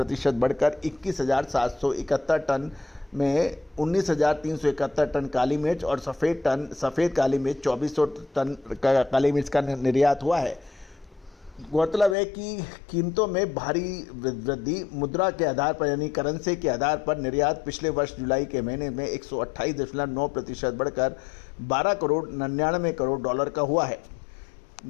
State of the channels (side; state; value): right; drops out; at 12.2 s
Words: बढ़कर 21,771 टन में 19,371 टन काली मिर्च और सफ़ेद काली मिर्च 2,400 टन काली मिर्च का निर्यात हुआ है। गौरतलब है कि कीमतों में भारी वृद्धि मुद्रा के आधार पर यानी करेंसी के आधार पर निर्यात पिछले वर्ष जुलाई के महीने में 128.9% बढ़कर 12 करोड़ 99 करोड़ डॉलर का हुआ है।